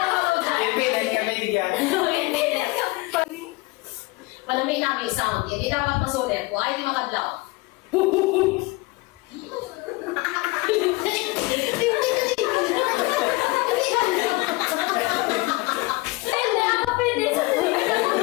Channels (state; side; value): quieter; right; 23.1 dB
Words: Palamig namin sound. Hindi dapat masulit. Kung ay di makadlaw. Hindi ako pwede sa